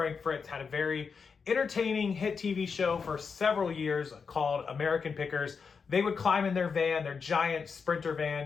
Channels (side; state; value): right; quieter; 5.6 dB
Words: Fritz had a very entertaining hit TV show for several years called American Pickers. They would climb in their van, their giant Sprinter